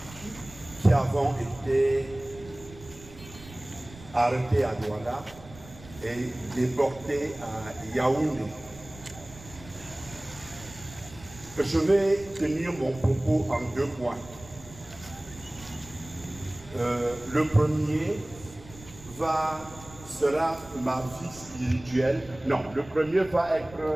qui avons été arrêtés à Douala et déportés à Yaoundé. Je vais tenir mon propos en deux points. Le premier sera ma vie spirituelle. Non, le premier va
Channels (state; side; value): noise; right; rumble, 19 dB below the sound